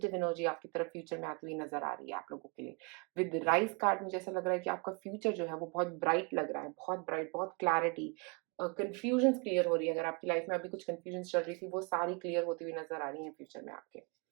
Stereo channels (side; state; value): left; quieter; 32.3 dB